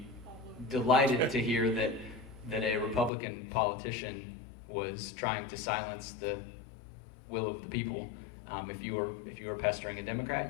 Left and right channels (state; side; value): drops out; right; at 3.1 s